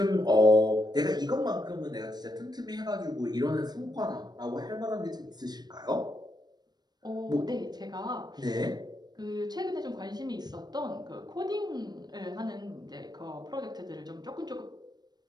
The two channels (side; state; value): left; late; 0.20 ms